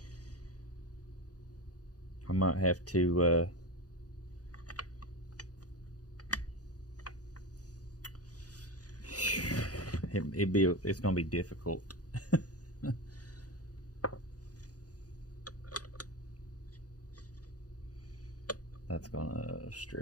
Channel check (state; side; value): late; right; 0.68 ms